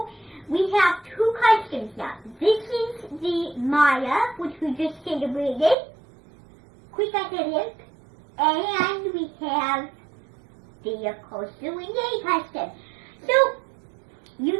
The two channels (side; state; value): left; drops out; at 5.8 s